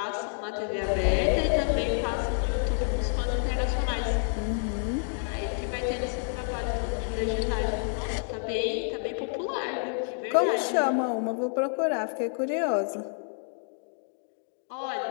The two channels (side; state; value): right; silent; digital silence